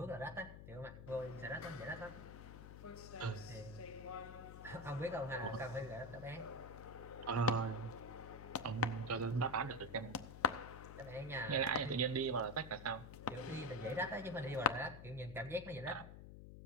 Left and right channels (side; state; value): left; noise; hum, 12 dB below the sound